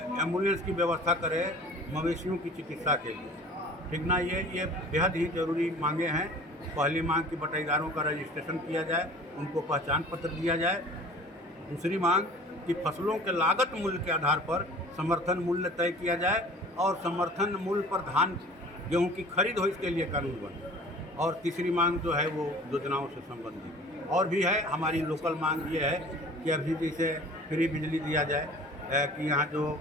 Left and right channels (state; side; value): normal; both; correlation 0.45